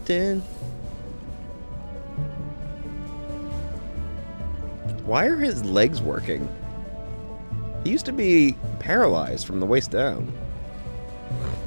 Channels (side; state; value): both; inverted; correlation -1.00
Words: Why are his legs working? He used to be paralyzed from the waist down.